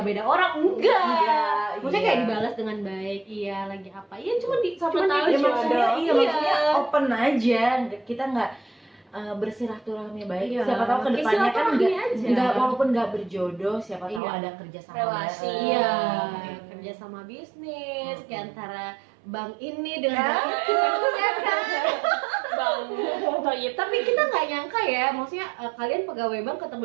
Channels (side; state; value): left; drops out; at 14.2 s